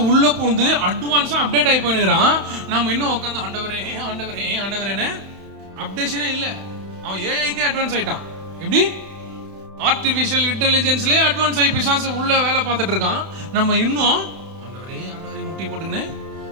உள்ள பூந்து அட்வான்ஸா அப்டேட் ஆகி போயிடுறான். நம்ம இன்னும் உட்காந்து ஆண்டவரே ஆண்டவரே ஆண்டவரேன்னு அப்டேஷனே இல்ல. அவன் ஏஐக்கே அட்வான்ஸ் ஆயிட்டான். எப்படி? ஆர்டிபிஷியல் இன்டெலிஜென்ஸ்லயே அட்வான்ஸ் ஆகி பிசாசு உள்ள வேலை பார்த்துட்டு இருக்கான். நம்ம இன்னும் ஆண்டவரே ஆண்டவரே முட்டி போட்டுக்கின்னு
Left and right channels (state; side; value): late; left; 31 ms